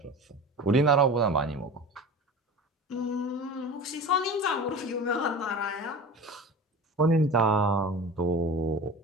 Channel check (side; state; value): both; normal; correlation 0.34